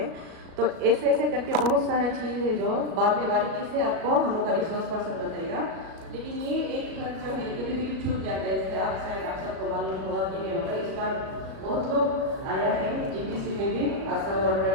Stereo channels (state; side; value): late; left; 37 ms